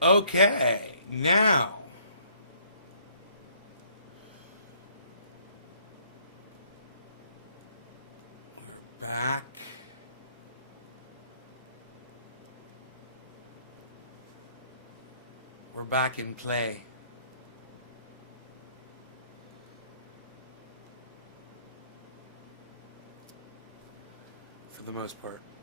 go. Okay, now. Back. We're back in play. For the most part.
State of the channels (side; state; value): both; inverted; correlation -0.62